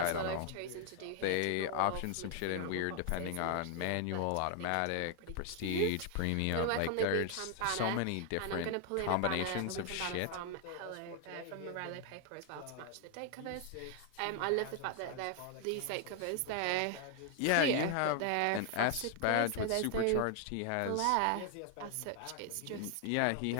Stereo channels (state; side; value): different; both; correlation 0.00